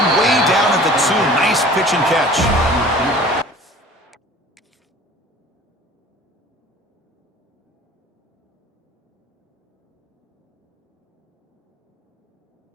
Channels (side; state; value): both; normal; correlation 0.46